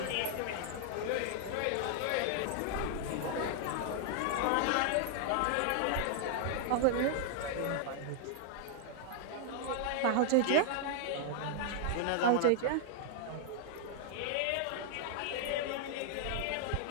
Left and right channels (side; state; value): both; different; correlation 0.00